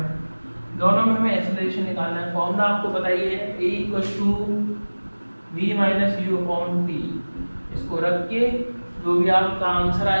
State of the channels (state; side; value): inverted; both; correlation -1.00